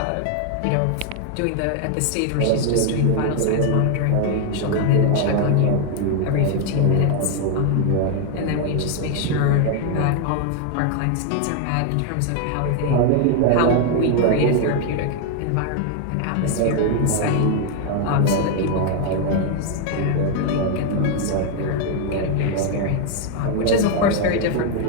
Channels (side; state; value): both; different; correlation 0.00